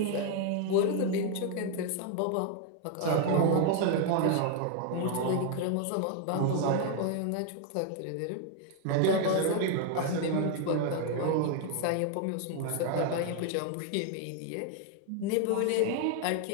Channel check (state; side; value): different; both; correlation 0.01